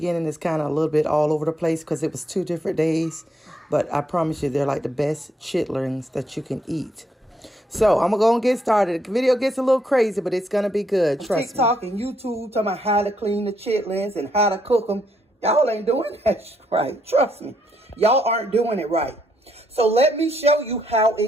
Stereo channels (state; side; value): normal; both; correlation 0.75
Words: is kind of a little bit all over the place because it was 2 different days, but I promise you they're like the best chitlins that you can eat. So I'm going to go and get started. The video gets a little crazy, but it's going to be good, trust me. TikTok and YouTube talking about how to clean the chitlins and how to cook them. Y'all ain't doing that right, trust me. Y'all aren't doing it right. So let me show you how